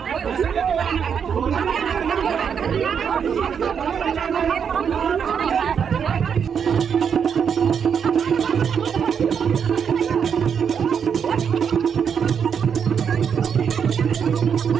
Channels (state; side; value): quieter; left; 7.2 dB